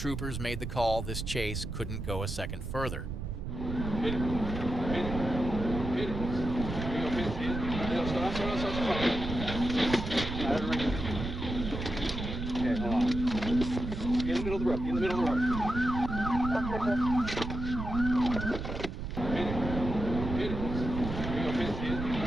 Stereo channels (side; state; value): right; noise; rumble, 5 dB below the sound